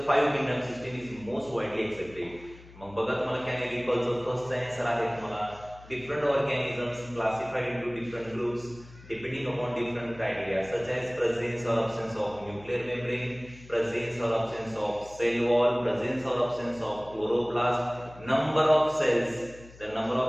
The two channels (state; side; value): noise; left; hum, 20 dB below the sound